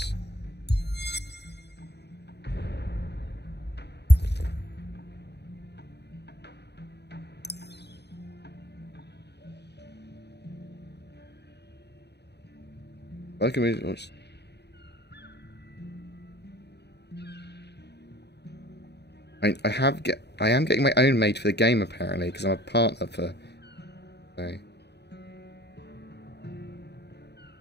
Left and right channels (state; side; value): late; right; 0.49 ms